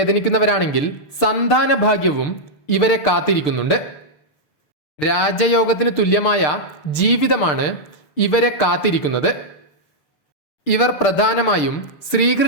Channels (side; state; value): right; late; 6.7 ms